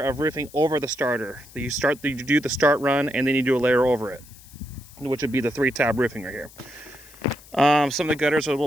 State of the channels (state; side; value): noise; left; hiss, 22 dB below the sound